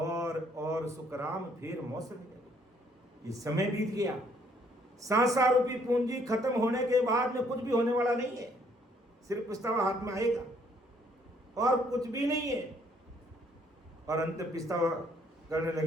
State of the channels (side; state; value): both; normal; correlation 0.66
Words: सुखराम फिर मौसम नहीं लगे। ये समय बीत गया, सांसा रूपी पूंजी खत्म होने के बाद में कुछ भी होने वाला नहीं है, सिर्फ पछतावा हाथ में आएगा और कुछ भी नहीं है। और अंत पछतावा करने